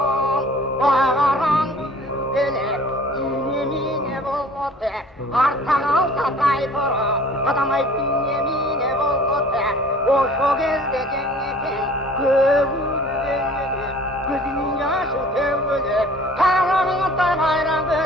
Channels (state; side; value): normal; both; correlation 0.48